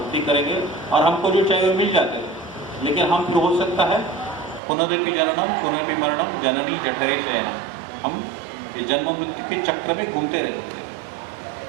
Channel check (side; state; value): left; drops out; at 4.6 s